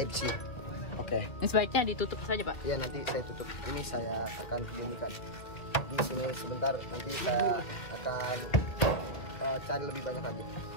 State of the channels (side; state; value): right; late; 2.4 ms